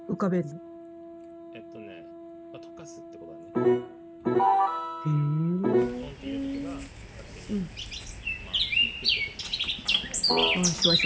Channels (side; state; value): both; identical; correlation 1.00